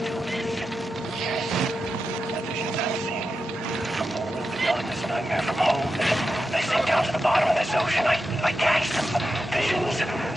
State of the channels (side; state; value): both; normal; correlation 0.89